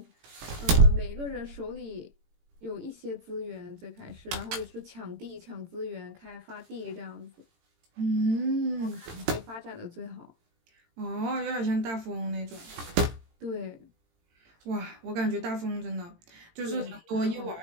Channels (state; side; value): late; left; 18 ms